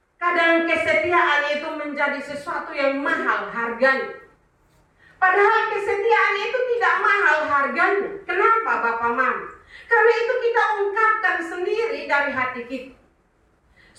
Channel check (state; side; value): identical; both; correlation 1.00